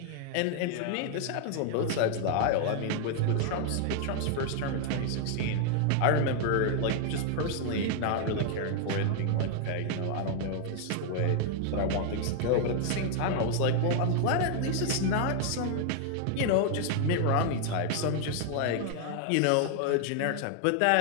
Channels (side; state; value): both; different; correlation 0.00